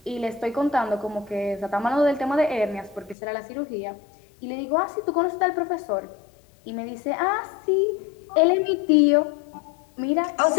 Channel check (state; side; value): drops out; right; at 3.2 s